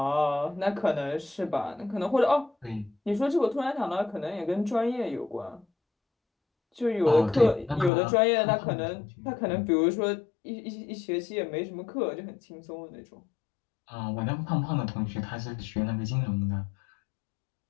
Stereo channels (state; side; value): drops out; right; at 7.9 s